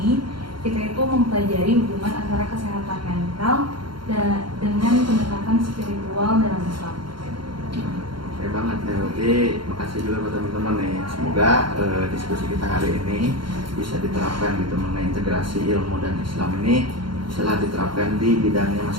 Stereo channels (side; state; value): left; late; 0.73 ms